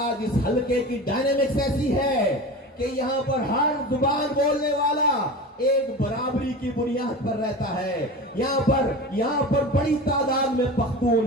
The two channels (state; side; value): normal; both; correlation 0.31